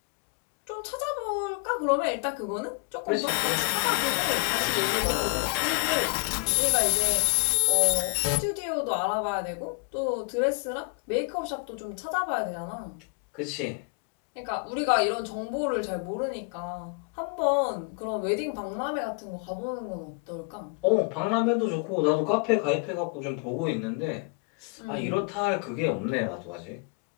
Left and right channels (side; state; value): right; quieter; 33.1 dB